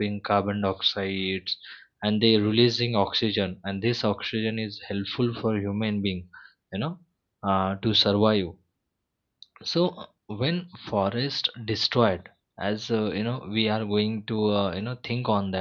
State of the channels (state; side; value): identical; both; correlation 1.00